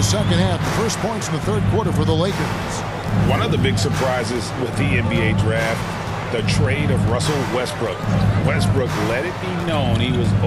second half. The first points in the third quarter for the Lakers. One of the big surprises with the NBA draft, the trade of Russell Westbrook. Westbrook let it be known he was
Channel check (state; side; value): identical; both; correlation 1.00